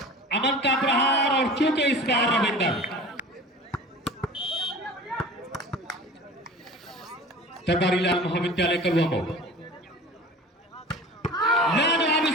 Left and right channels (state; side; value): normal; both; correlation 0.39